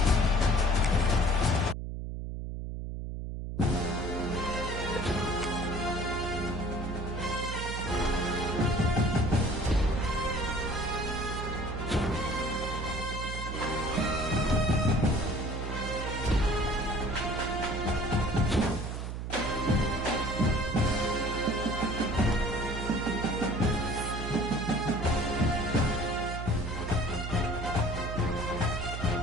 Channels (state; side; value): noise; right; hum, 5 dB below the sound